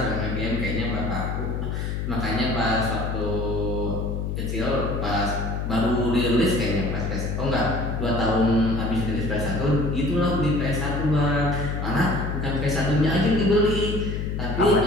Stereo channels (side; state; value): left; noise; hum, 2 dB below the sound